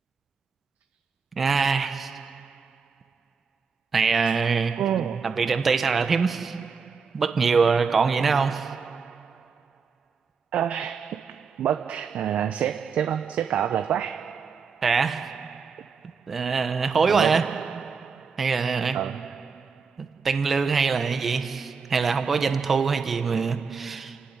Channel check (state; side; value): quieter; left; 5.4 dB